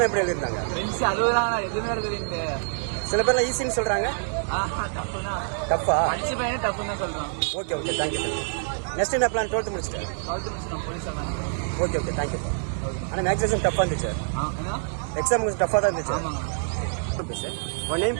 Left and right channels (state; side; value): silent; left; digital silence